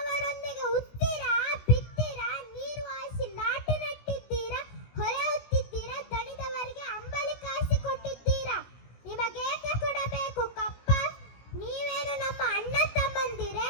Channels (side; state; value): right; late; 17 ms